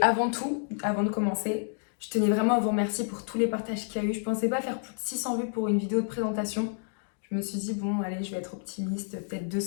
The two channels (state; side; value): silent; right; digital silence